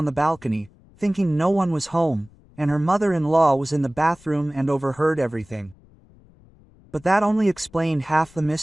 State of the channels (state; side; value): noise; left; rumble, 27 dB below the sound